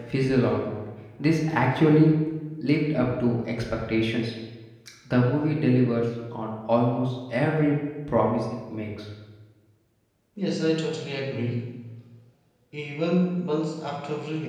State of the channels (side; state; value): both; identical; correlation 1.00